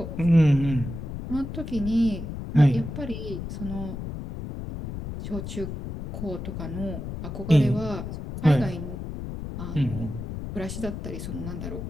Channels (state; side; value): noise; left; rumble, 7 dB below the sound